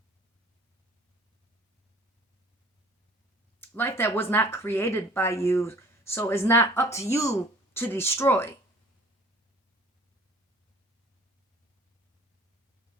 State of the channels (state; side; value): normal; both; correlation 0.50